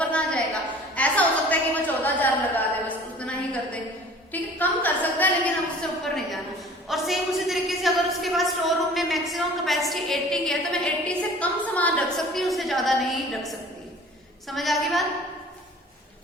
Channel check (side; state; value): both; normal; correlation 0.47